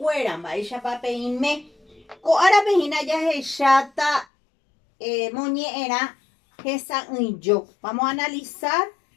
mba'éichapa peĩme. Ko'ára pehína jahecháta moñe'ẽrã hesa'ỹijo. Vamos a analizar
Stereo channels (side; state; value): right; drops out; at 4.2 s